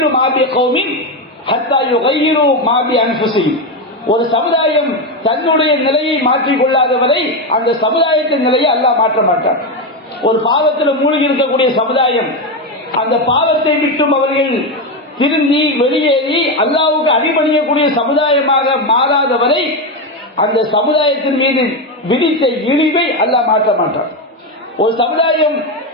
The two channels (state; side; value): normal; both; correlation 0.11